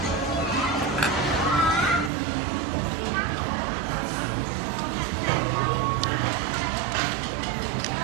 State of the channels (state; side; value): drops out; left; at 2.1 s